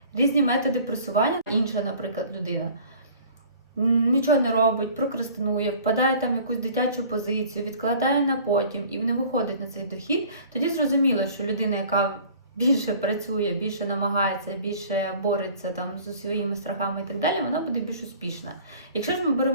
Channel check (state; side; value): inverted; both; correlation -0.48